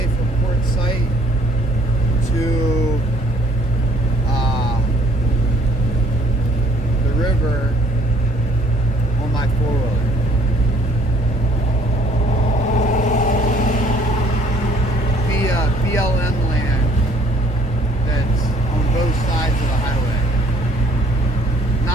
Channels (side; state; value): both; normal; correlation 0.60